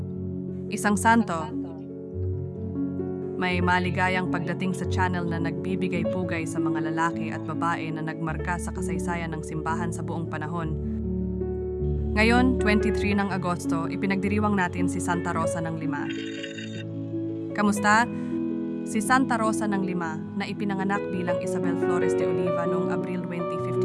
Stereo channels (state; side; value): identical; both; correlation 1.00